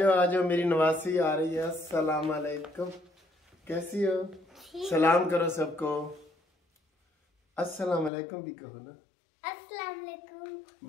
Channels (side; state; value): right; drops out; at 8.1 s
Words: आ जाओ, मेरी नवासी आ रही है। अस्सलाम अलैकुम, कैसी हो? सलाम करो सबको। अस्सलाम अलैकुम भी कहो ना। अस्सलाम वालेकुम।